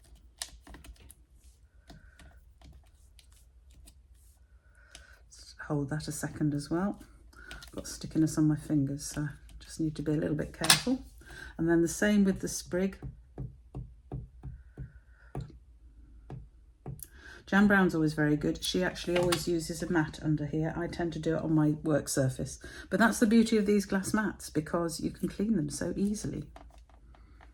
Just hold that a second as well. I've got stickiness on my fingers, so I just need to be a little bit careful. And then the same with the sprig. Jan Brown's always very good. She actually always uses a mat under here. I tend to do it on my work surface. But that's the beauty of these glass mats, because you can clean them so easily.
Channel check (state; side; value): identical; both; correlation 1.00